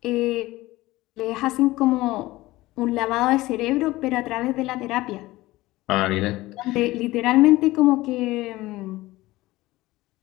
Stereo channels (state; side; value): quieter; right; 18.4 dB